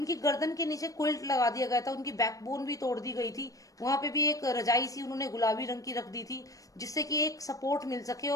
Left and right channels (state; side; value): late; right; 0.16 ms